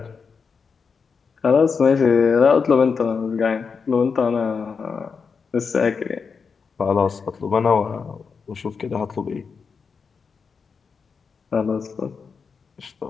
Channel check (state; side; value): quieter; right; 5.5 dB